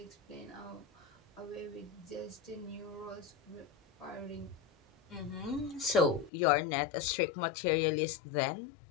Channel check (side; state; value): right; drops out; at 6.3 s